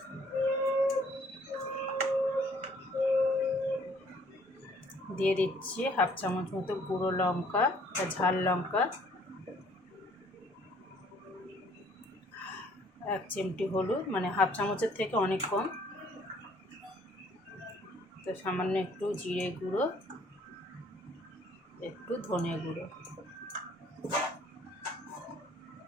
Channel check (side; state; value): both; normal; correlation 0.60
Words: দিয়ে দিচ্ছি হাফ চামচ মতো গুঁড়ো লঙ্কা বা ঝাল লঙ্কা, 1 চিমটি হলুদ, মানে হাফ চামচের থেকে অনেক কম। তো সামান্য একটু জিরে গুঁড়ো, একটু ধনে গুঁড়ো,